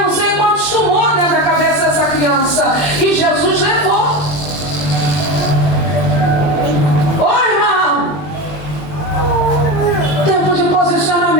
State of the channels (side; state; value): right; late; 20 ms